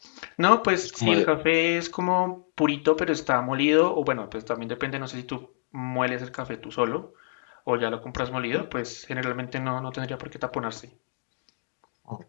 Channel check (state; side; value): silent; right; digital silence